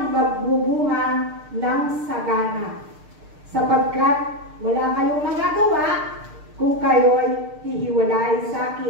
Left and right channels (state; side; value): late; left; 6.6 ms